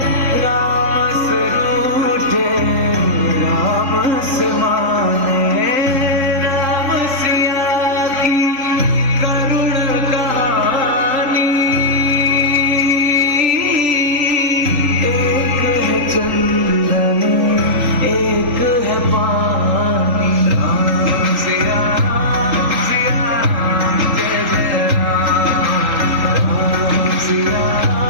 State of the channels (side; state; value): left; late; 3.5 ms